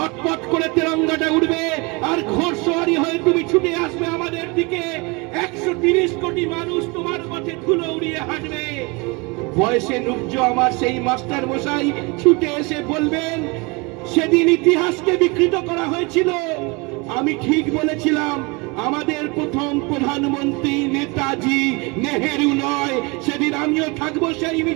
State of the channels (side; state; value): left; quieter; 27.6 dB